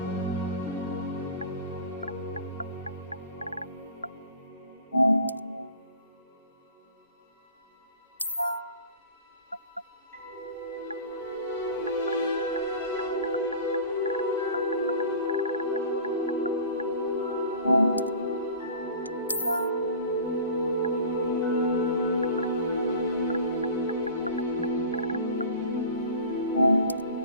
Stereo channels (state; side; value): inverted; both; correlation -0.40